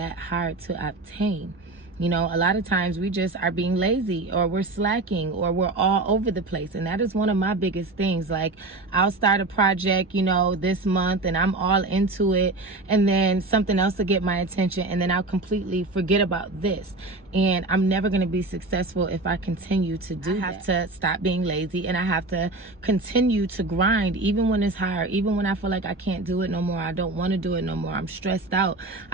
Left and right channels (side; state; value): left; quieter; 3.0 dB